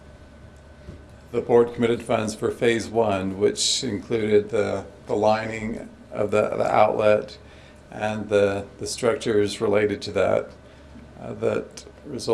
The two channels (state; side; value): identical; both; correlation 1.00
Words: the board committed funds for phase one, which included the lining of the outlet and the structures related to that, that